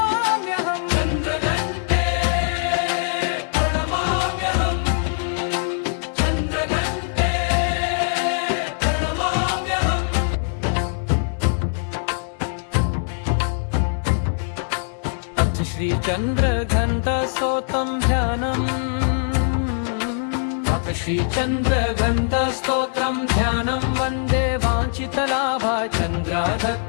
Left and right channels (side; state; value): right; silent; 64 dB below the other